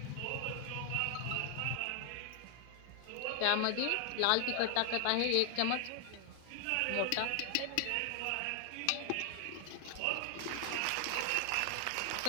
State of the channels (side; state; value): both; different; correlation 0.00